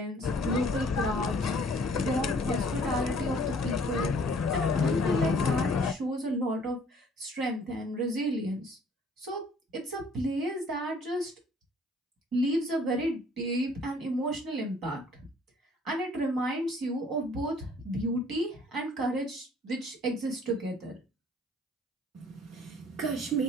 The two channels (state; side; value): normal; both; correlation 0.57